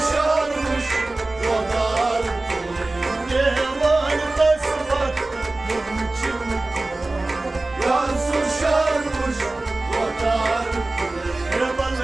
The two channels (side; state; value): left; quieter; 3.0 dB